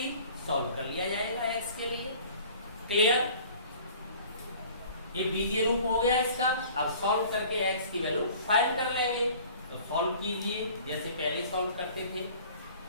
सॉल्व कर लिया जाएगा एक्स के लिए। क्लियर। ये बीजीय रूप हो गया इसका। अब सॉल्व करके एक्स की वैल्यू फाइंड कर लेंगे। तो सॉल्व कीजिए जैसे पहले सॉल्व करते थे।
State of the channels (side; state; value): both; inverted; correlation -0.48